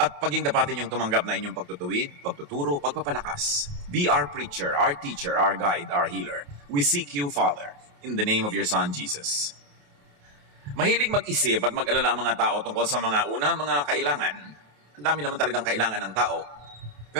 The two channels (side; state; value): left; late; 28 ms